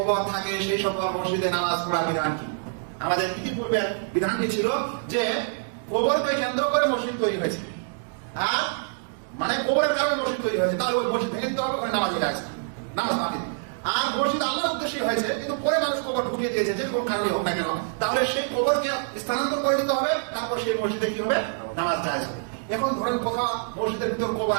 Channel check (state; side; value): silent; left; digital silence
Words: থাকে সেই সকল মসজিদে নামাজ পড়ার বিধান কি? আমাদের ইতিপূর্বের বিধানটি ছিল যে কবরকে কেন্দ্র করে মসজিদ তৈরি হয়েছে, আর মানে কবরের কারণে মসজিদ তৈরি হয়েছে, তাহলে ওই মসজিদ ভেঙে দিতে হবে, ওখানে নামাজ হয়ে আসবে, নামাজ বাতিল। আর মসজিদ আল্লাহর উদ্দেশ্যে হয়েছে, কিন্তু পরে মানুষ কবর ঢুকিয়ে দিয়েছে, যে কোন কারণে হোক না কেন, তাহলে সেই কবরকে স্থানান্তর করে দিতে হবে, তারপর সেই মসজিদে কি হবে? নামাজ জায়েজ হবে। এখন ধরেন কোথাও মসজিদের ভিতর কবর